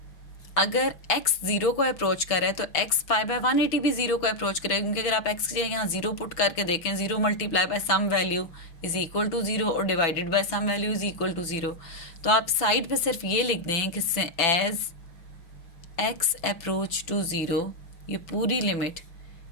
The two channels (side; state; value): right; late; 6.0 ms